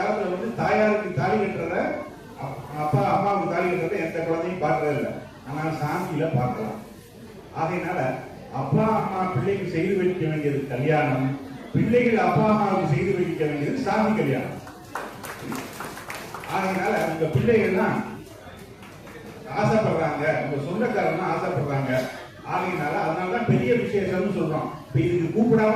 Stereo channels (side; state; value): both; identical; correlation 1.00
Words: தாயாருக்கு தாலி கட்டுறத, அப்பா அம்மாவுக்கு தாலி கட்டுறத எந்த குழந்தையும் பார்க்கறது இல்லை. ஆனால் சாந்தியில பார்க்கலாம். ஆகையினால அப்பா அம்மா பிள்ளைக்கு செய்து வைக்க வேண்டியது கல்யாணம், பிள்ளைகள் அப்பா அம்மாவுக்கு செய்து வைக்க வேண்டியது சாந்தி கல்யாணம். ஆகையினால உங்க பிள்ளைகள்லாம் ஆசைப்படுறாங்க, உங்க சொந்தக்காரங்க ஆசைப்படுறாங்க. ஆகையினால அதனாலதான் பெரிய விசேஷம்னு சொல்றோம். இப்ப இதுக்கு